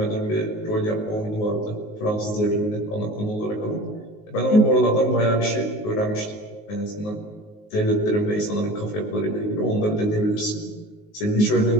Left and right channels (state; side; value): late; right; 19 ms